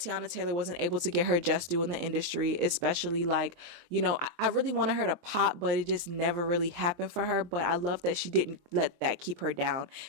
Taylor wasn't able to get her just due in the industry, especially like, you know, I really wanted her to pop, but it just never really happened for her. But I love that she didn't let that keep her down.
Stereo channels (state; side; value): late; left; 23 ms